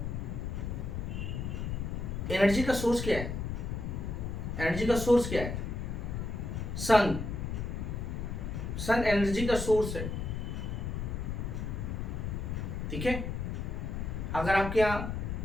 एनर्जी का सोर्स क्या है? एनर्जी का सोर्स क्या है? सन, सन एनर्जी का सोर्स है, ठीक है। अगर आपके यहाँ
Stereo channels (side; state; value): left; noise; rumble, 3 dB below the sound